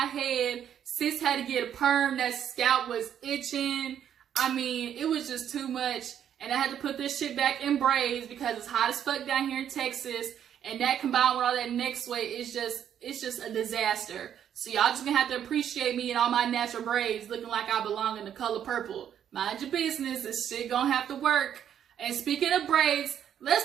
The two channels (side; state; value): left; quieter; 9.5 dB